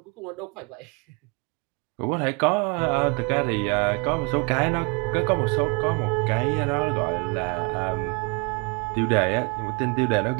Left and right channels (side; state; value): left; quieter; 31.5 dB